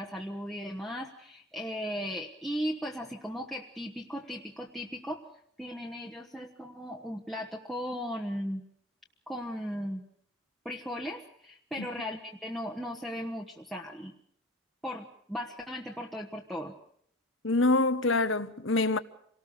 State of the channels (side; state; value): both; normal; correlation 0.37